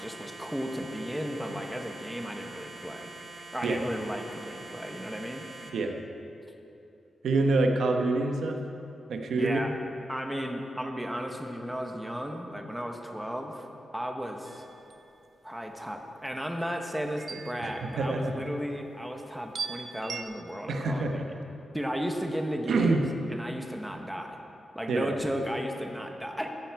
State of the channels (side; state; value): both; normal; correlation 0.88